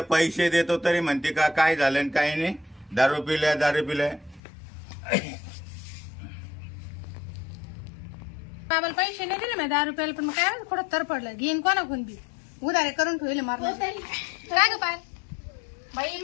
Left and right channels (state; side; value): drops out; right; at 4.4 s